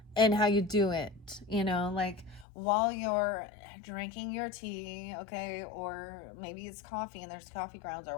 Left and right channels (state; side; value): drops out; right; at 2.5 s